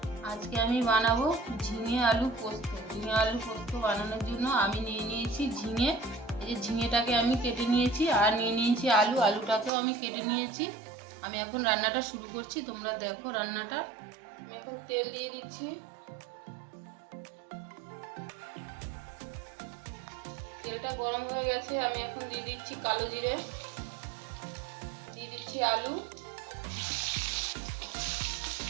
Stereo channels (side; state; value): left; drops out; at 9.7 s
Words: আজকে আমি বানাবো ঝিঙে আলু পোস্ত। ঝিঙে আলু পোস্ত বানানোর জন্য আমি নিয়ে নিয়েছি ঝিঙে। এই যে ঝিঙেটাকে আমি কেটে নিয়েছি, আর নিয়ে নিয়েছি আলু। আলুটাকেও আমি কেটে নিয়েছি। আমি এখন রান্নাটা শুরু করছি, তোমরা দেখো রান্নাটা। আমি এখন তেল দিয়ে দিচ্ছি। তেলটা গরম হয়ে গেছে, আমি এখন দিয়ে দিচ্ছি কালো জিরে, দিয়ে দিচ্ছি আলু,